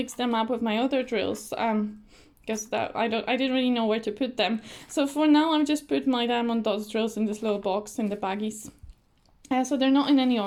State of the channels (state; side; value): identical; both; correlation 1.00